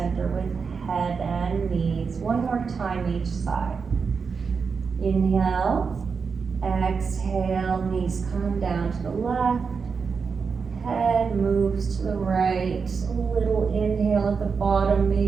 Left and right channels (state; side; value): quieter; left; 5.5 dB